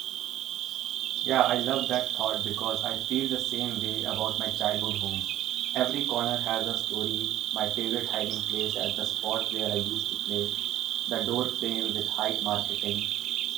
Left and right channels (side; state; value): left; quieter; 13.4 dB